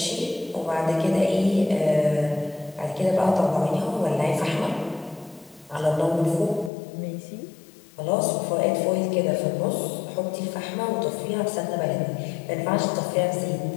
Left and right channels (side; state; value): right; drops out; at 6.7 s